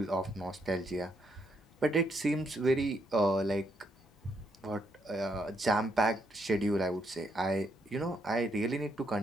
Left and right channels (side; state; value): both; normal; correlation 0.76